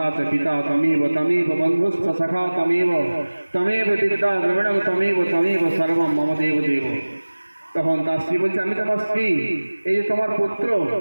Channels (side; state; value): both; inverted; correlation -1.00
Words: চ পিতা তমেব তমেব বন্ধুস্থ সখা তমেব তমেব বিদ্যা দ্রবিণম তমেব তমেব সর্বম মম দেব দেব। তখন তার স্ত্রী বলছে আমি তোমার স্ত্রী, এই যে তোমার পুত্র।